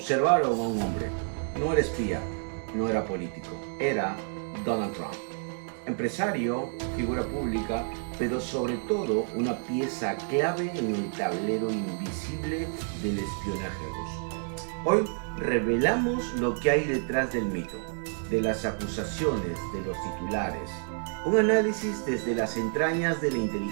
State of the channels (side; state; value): left; silent; 57 dB below the other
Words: a un hombre. No era espía, no era político, era Donald Trump. Empresario, figura pública, pero sobre todo una pieza clave en el tablero invisible del espionaje ruso. Hoy revelamos lo que hay detrás del mito, de las acusaciones, de los titulares. Un análisis desde las entrañas de la